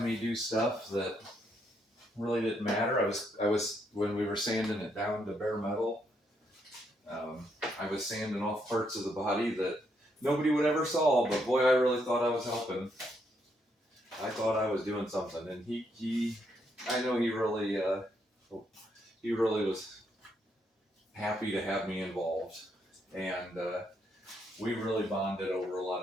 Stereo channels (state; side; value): normal; both; correlation 0.76